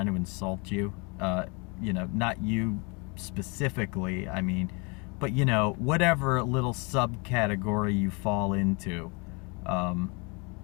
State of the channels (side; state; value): right; quieter; 31.1 dB